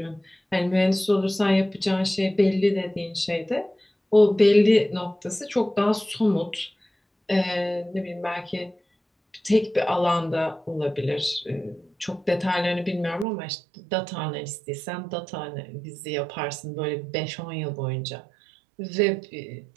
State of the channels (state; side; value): drops out; left; at 13.2 s